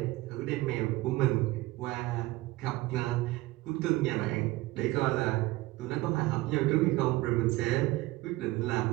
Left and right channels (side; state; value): left; quieter; 19.3 dB